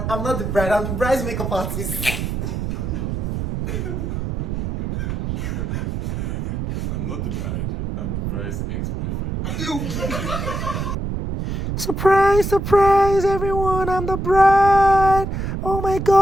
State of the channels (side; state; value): right; noise; rumble, 3 dB below the sound